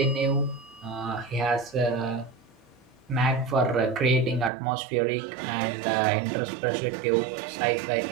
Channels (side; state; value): left; drops out; at 4.5 s